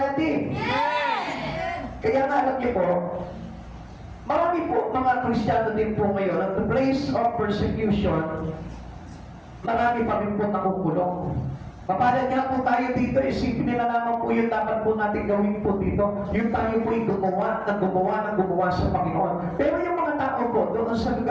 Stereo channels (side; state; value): both; identical; correlation 1.00